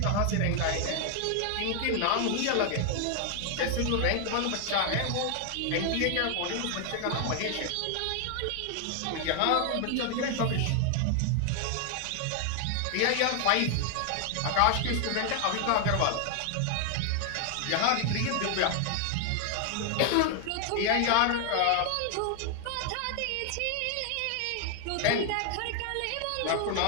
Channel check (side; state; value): both; different; correlation 0.00